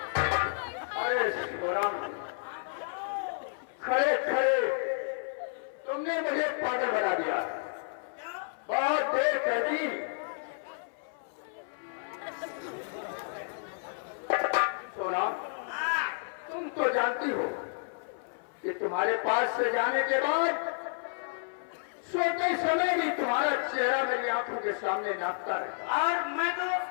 अरे शिवराम, खड़े खड़े तुमने मुझे पागल बना दिया। बहुत देर कर दी। सोना, तुम तो जानती हो कि तुम्हारे पास से जाने के बाद सोते समय भी तुम्हारा चेहरा मेरी आंखों के सामने नाचता है। और मैं तो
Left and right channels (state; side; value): silent; right; 57 dB below the other